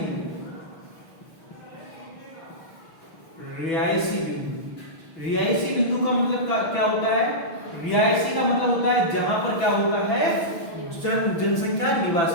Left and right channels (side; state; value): right; late; 6.3 ms